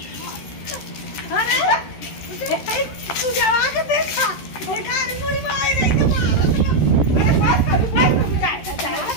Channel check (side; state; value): right; late; 13 ms